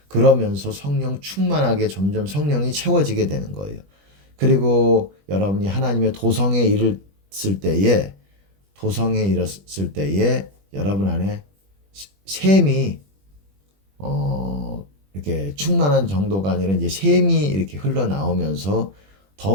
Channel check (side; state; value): left; late; 20 ms